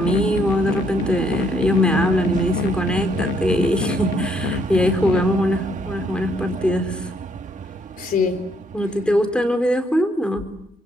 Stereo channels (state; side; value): normal; both; correlation 0.70